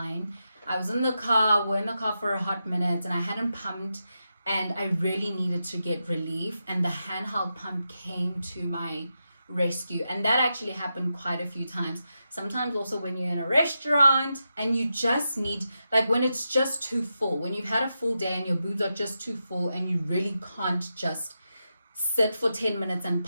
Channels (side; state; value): both; inverted; correlation -0.87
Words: I was in the car, we're in the car for a hot minute, and I hadn't pumped, and I really needed to get relief. And the handheld pump came to my rescue. And that actually happened quite a few times. Sometimes also when you're in a restaurant and you just need, like when it's just too full, when you've had a full day and your boobs are just too full and you really can't just sit for 10 minutes and